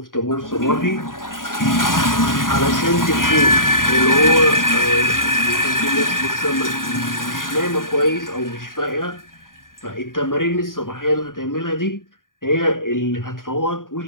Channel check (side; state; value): right; late; 0.90 ms